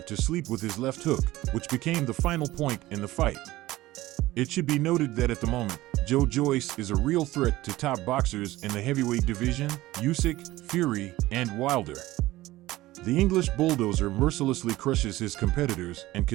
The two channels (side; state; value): left; quieter; 17.2 dB